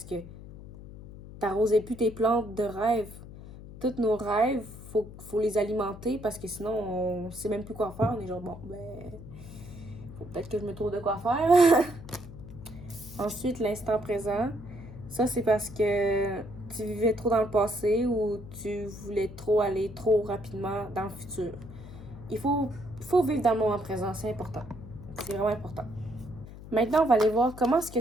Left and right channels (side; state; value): left; noise; hum, 15 dB below the sound